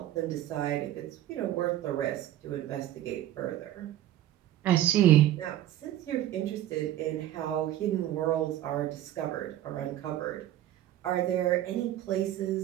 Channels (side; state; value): left; quieter; 12.8 dB